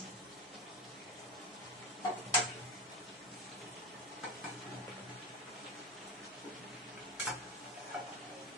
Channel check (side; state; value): both; normal; correlation 0.21